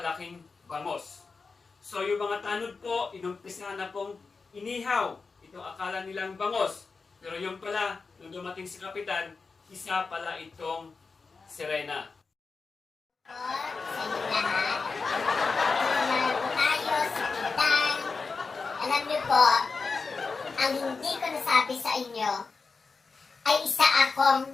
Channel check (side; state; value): right; quieter; 4.5 dB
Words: bangos. So yung mga tanod po, inumpisa na pong inihaw itong akala nilang bangos. Pero yung pala, nung dumating si Kapitan, isa pala itong sirena. Sa inyo lahat. Naroon tayo sa Pintang. Alam niyo po, ang hindi ko nasabi sa inyo ay isa akong